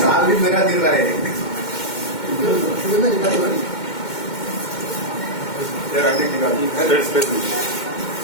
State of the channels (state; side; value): late; right; 2.1 ms